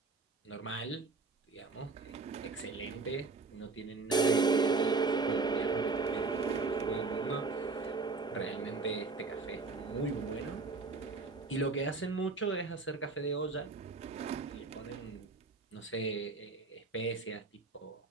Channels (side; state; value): left; quieter; 3.9 dB